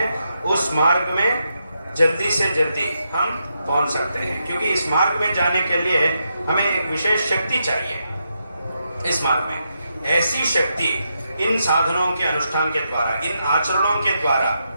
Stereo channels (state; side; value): inverted; both; correlation -0.83